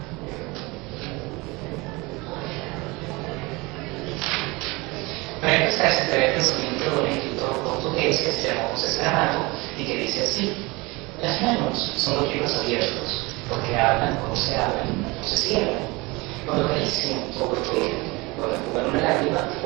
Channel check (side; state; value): left; quieter; 24.3 dB